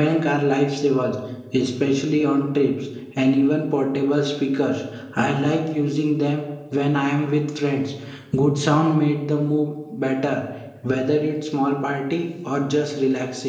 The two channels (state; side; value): identical; both; correlation 1.00